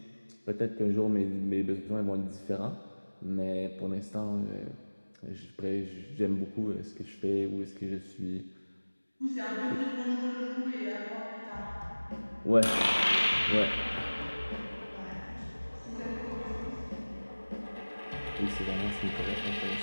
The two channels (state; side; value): inverted; both; correlation -1.00